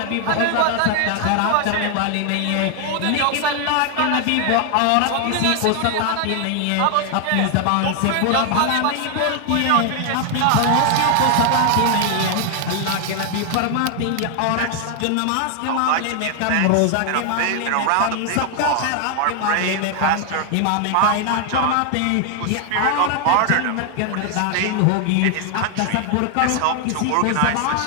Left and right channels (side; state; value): both; different; correlation 0.00